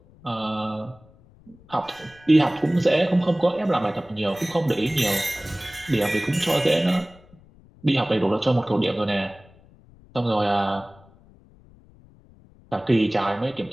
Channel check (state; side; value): noise; left; rumble, 26 dB below the sound